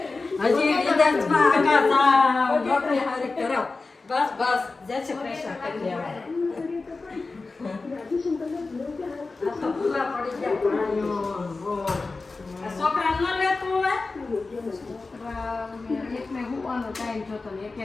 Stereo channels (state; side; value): quieter; right; 3.8 dB